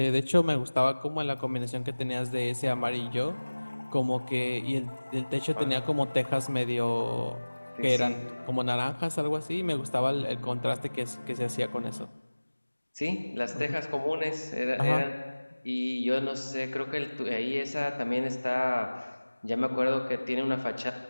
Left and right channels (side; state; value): both; inverted; correlation -1.00